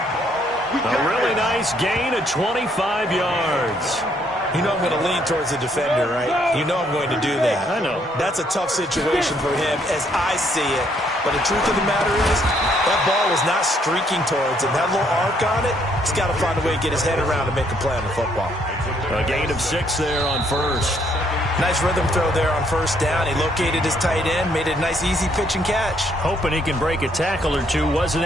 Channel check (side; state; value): both; normal; correlation 0.69